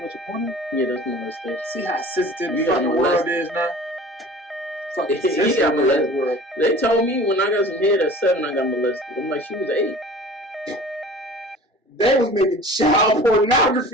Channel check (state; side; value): normal; both; correlation 0.43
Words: watch a porno? Yeah, that's molestation. See how sensitive the fucking world is now? Fucking sensitive world. They told me when I got some head at 7, I got molested. I'm like, she was 8. They was making child